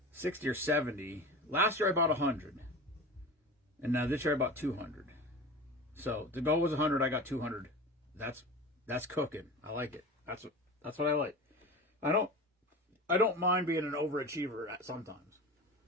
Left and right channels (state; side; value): normal; both; correlation 0.32